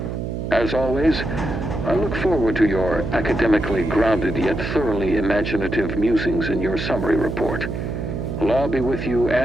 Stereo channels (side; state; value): right; noise; hum, 4 dB below the sound